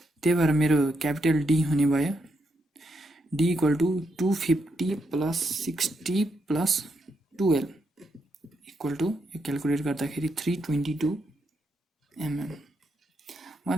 त्यही भएर मेरो क्यापिटल डी हुने भयो d equal to 250 plus 60 plus 12 equal to, यो क्यालकुलेट गर्दाखेरि 322 mm।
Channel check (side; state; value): both; normal; correlation 0.81